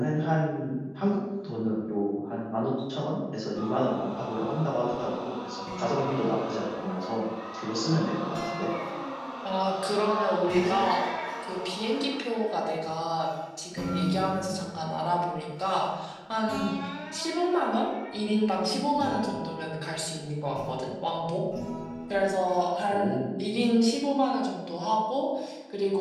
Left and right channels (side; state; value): both; identical; correlation 1.00